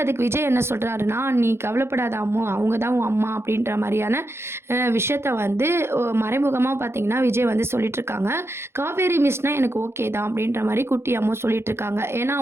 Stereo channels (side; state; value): left; late; 0.12 ms